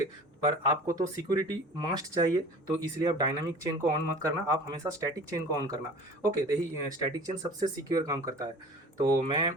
पर आपको तो सिक्योरिटी मस्ट चाहिए, तो इसलिए आप डायनामिक चेन को ऑन मत करना, आप हमेशा स्टैटिक चेन को ऑन करना, ओके। तो यही स्टैटिक चेन सबसे सिक्योर काम करता है। तो मैं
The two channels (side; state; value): both; normal; correlation 0.41